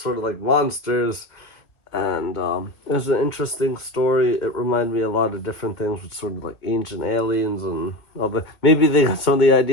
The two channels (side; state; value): right; late; 1.7 ms